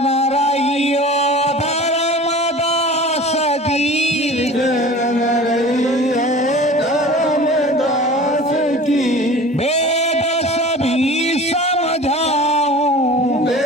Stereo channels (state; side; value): normal; both; correlation 0.40